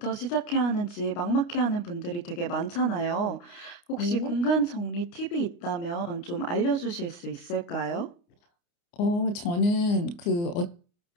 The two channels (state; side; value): late; right; 29 ms